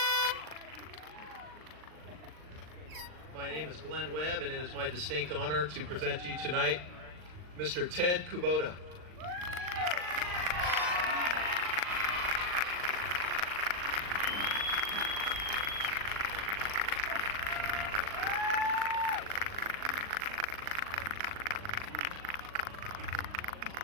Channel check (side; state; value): left; late; 39 ms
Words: My name is Glenn Webb, and it is my distinct honor to present to you tonight Mr. Ted Kubota.